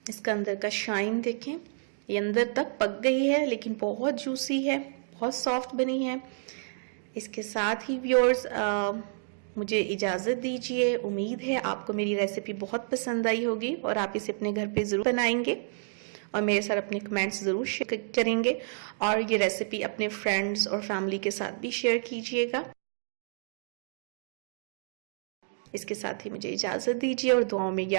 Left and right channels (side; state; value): left; silent; digital silence